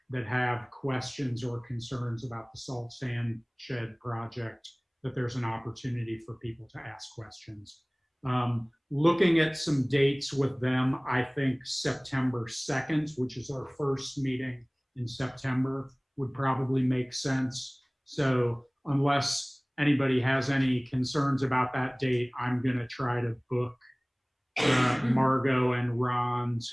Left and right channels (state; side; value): identical; both; correlation 1.00